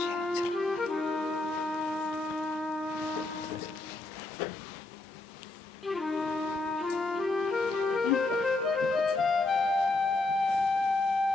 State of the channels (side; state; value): right; quieter; 3.1 dB